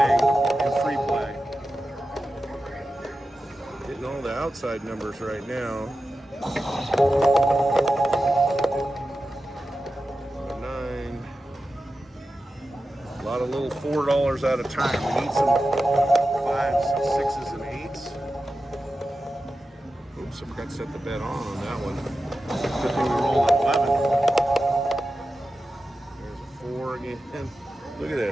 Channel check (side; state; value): both; normal; correlation 0.92